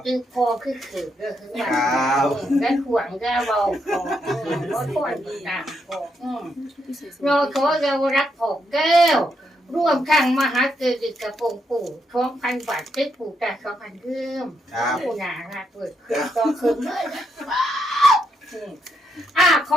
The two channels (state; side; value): normal; both; correlation 0.79